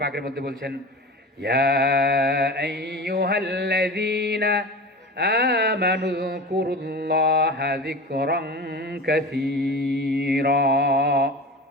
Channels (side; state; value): both; normal; correlation 0.32